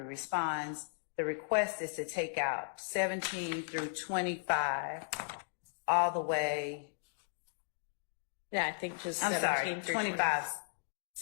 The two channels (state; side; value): silent; right; digital silence